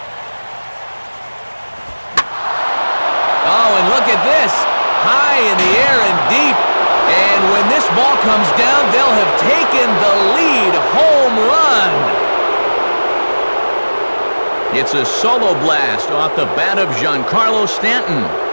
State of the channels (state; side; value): inverted; both; correlation -1.00